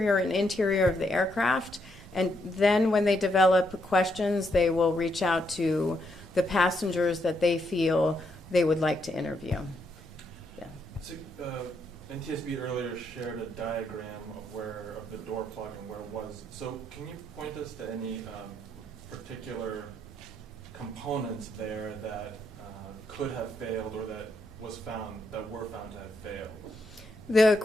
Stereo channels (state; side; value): normal; both; correlation 0.77